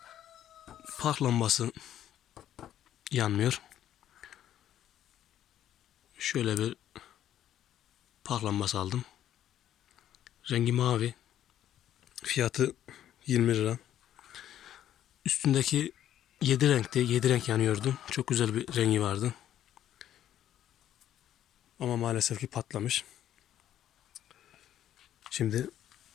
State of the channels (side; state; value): right; quieter; 11.3 dB